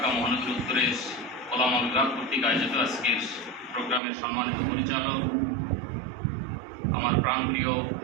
মহানগর উত্তরের ওলামা বিভাগ কর্তৃক আয়োজিত আজকের প্রোগ্রামের সম্মানিত পরিচালক আমার প্রাণপ্রিয়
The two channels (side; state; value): left; drops out; at 4.0 s